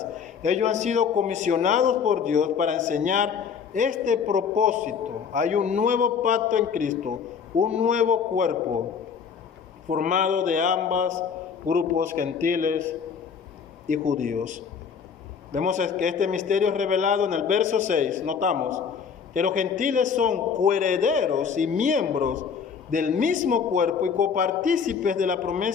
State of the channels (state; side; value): quieter; right; 6.5 dB